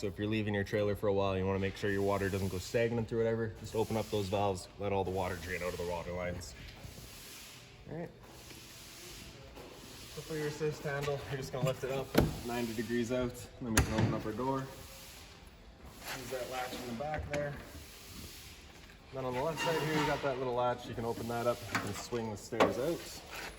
if you're leaving your trailer for a while, you want to make sure your water doesn't go stagnant or whatever, just open up those valves, let all the water drain out of the water lines. All right. So for your assist handle, you're just going to lift it up 90 degrees out, and then we can open up our door. Use that latch in the back there. Then on the left side here, you got that little latch. You can open that up and swing the stairs out.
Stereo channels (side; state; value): both; identical; correlation 1.00